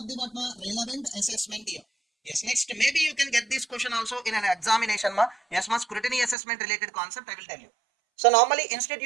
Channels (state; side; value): drops out; left; at 6.4 s